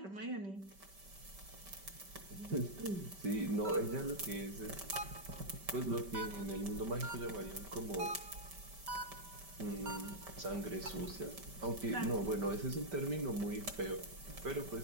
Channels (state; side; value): late; left; 5.1 ms